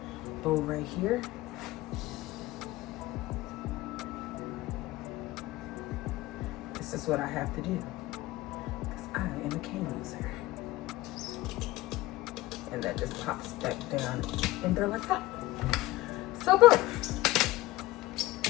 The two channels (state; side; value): quieter; right; 18.1 dB